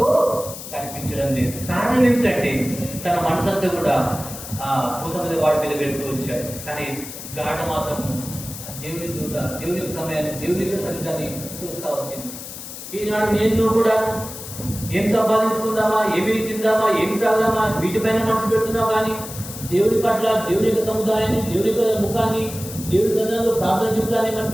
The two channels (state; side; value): noise; left; hiss, 11 dB below the sound